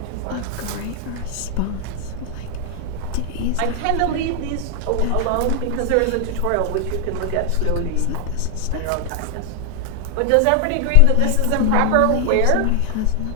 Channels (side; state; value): both; different; correlation 0.00